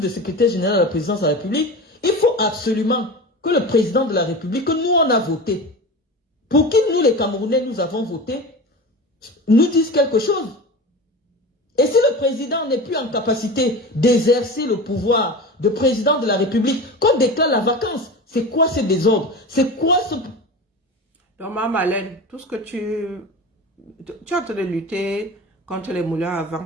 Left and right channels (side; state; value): both; normal; correlation 0.30